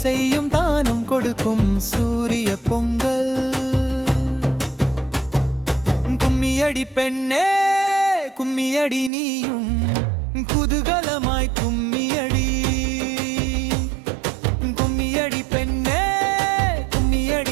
தானம் கொடுக்கும் சூரிய பொங்கல் கும்மியடி பெண்ணே கும்மியடி நீயும் குதூகலமாய் கும்மியடி கும்மியடி பெண்ணே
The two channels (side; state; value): left; drops out; at 9.1 s